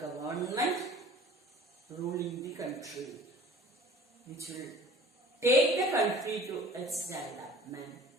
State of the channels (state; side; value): normal; both; correlation 0.47